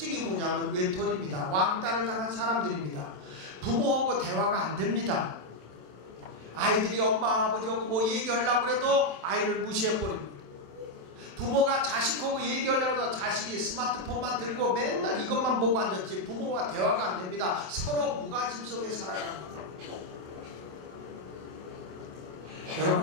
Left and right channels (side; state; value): left; late; 27 ms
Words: 뭐냐면 외톨이입니다. 왕따를 당한 사람들입니다. 부모하고 대화가 안 됩니다. 아이들이 엄마 아버지하고 얘기하려고 해도 아이를 무시해버립니다. 부모가 자식하고 얘기하려고 해도 자식이 스마트폰만 들고 맨날 이것만 보고 앉았지 부모와 대화가 안 됩니다. 서로 무관심 속에 살아갑니다.